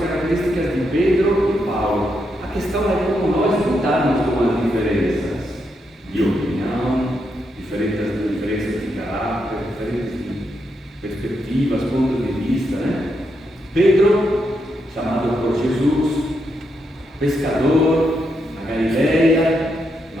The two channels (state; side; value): normal; both; correlation 0.81